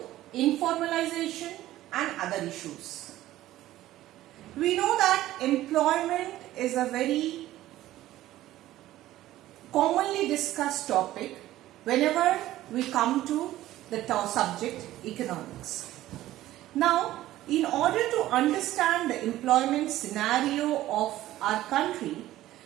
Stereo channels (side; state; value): left; quieter; 14.8 dB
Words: informalization and other issues. We know that employment is a very commonly discussed topic whenever we come to the subject economics. Now, in order to understand the employment scenario of our country,